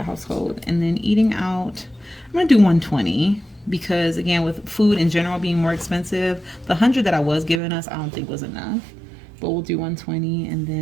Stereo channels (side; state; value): left; drops out; at 7.6 s